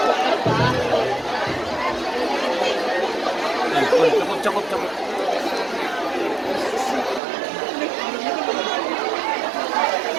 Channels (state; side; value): drops out; left; at 7.2 s